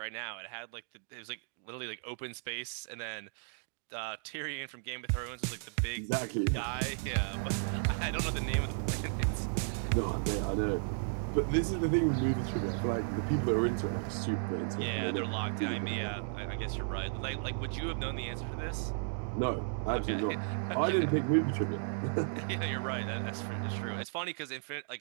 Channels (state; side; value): silent; left; digital silence